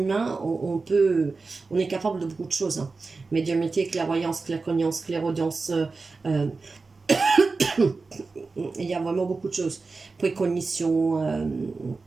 on est capable de beaucoup de choses. Hein. Médiumnité, clairvoyance, claircognance, clairaudience, il y a vraiment beaucoup de choses. Précognition,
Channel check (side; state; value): left; quieter; 4.0 dB